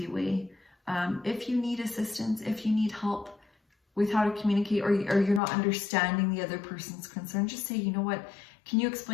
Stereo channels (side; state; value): right; drops out; at 5.4 s